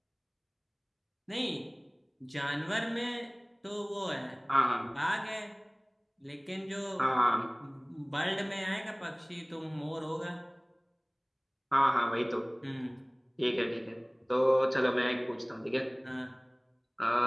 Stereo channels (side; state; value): both; identical; correlation 1.00